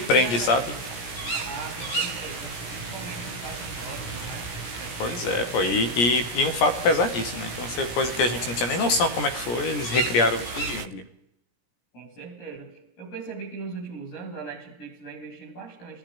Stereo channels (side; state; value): right; late; 17 ms